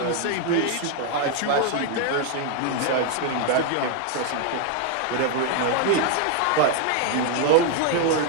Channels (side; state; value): both; different; correlation 0.01